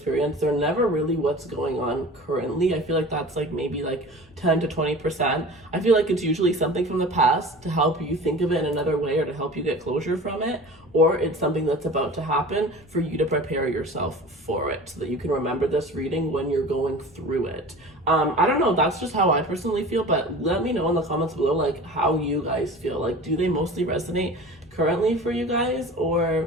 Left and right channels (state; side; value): noise; left; rumble, 27 dB below the sound